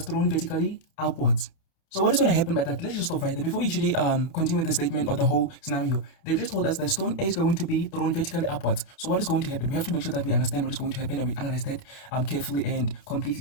thrown vertically upwards. So what is going to happen by that? Let's just stop right there. Before we actually continue with the statement or the whole scenario, they've just told us that stone A is going to be thrown vertically upwards. So what is going to happen? We have to make sure that we understand what is going to happen and we analyze that carefully and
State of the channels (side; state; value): right; late; 30 ms